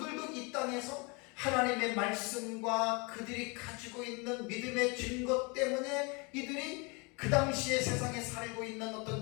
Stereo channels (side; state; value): right; quieter; 29.8 dB